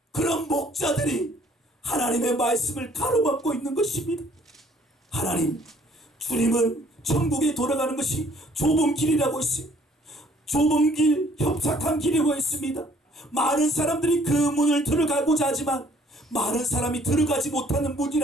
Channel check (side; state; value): both; normal; correlation 0.60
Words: 그런 목자들이 하나님의 말씀을 가로막고 있는 것입니다. 하나님, 주님은 천국에 돌아가는 것이 좁은 길이라고 했어요. 좁은 길, 협착한 길이라고 했습니다. 많은 사람들이 그 문을 들어가고자 하지만 많은 사람이 들어가지 못하는